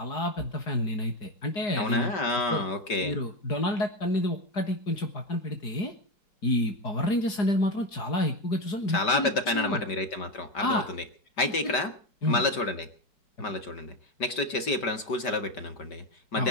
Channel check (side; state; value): right; late; 5.1 ms